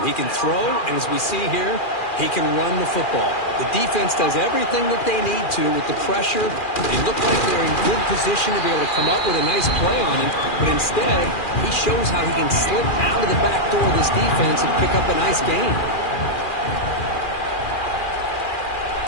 He can throw, and as we see here, he can run the football. The defense does everything that they need to with the pressure. They look like they're in good position to be able to come up with a nice play on him, but instead, he shows how he can slip out of the back door of this defense and pick up a nice gain.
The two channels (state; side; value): late; right; 2.4 ms